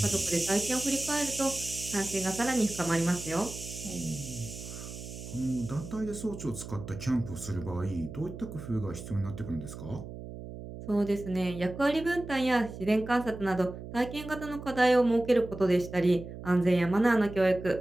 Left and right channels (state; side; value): noise; right; hum, 11 dB below the sound